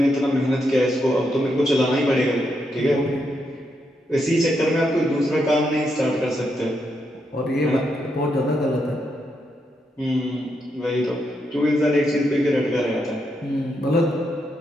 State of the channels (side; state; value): both; normal; correlation 0.81